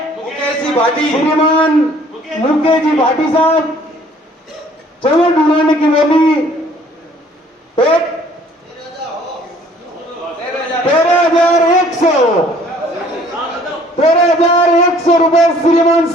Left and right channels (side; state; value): both; normal; correlation 0.57